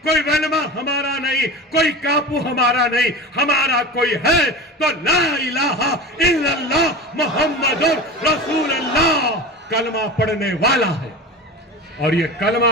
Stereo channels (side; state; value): both; normal; correlation 0.31